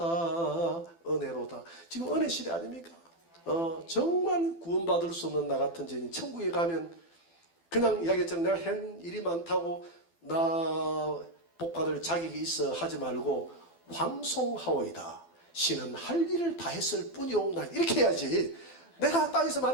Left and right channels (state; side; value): late; right; 12 ms